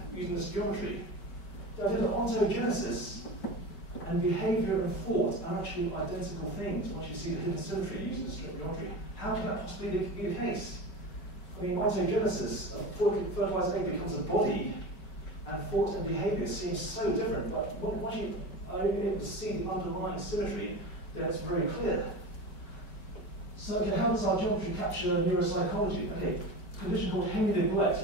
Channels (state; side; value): late; right; 5.0 ms